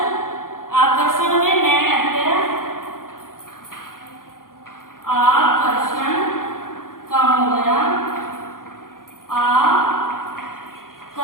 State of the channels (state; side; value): late; right; 0.91 ms